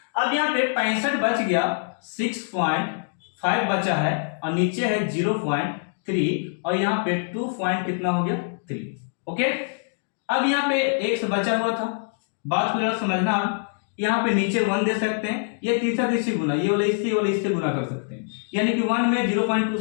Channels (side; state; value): right; silent; digital silence